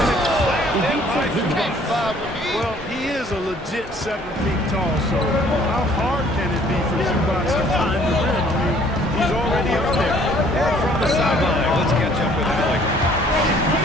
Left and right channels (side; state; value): both; normal; correlation 0.58